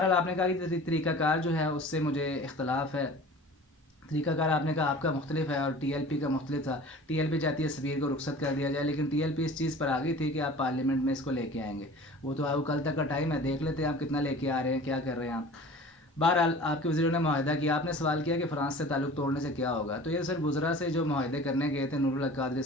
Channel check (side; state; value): both; normal; correlation 0.42